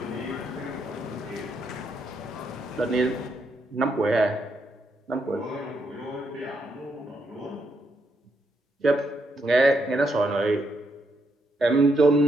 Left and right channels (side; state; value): both; normal; correlation 0.78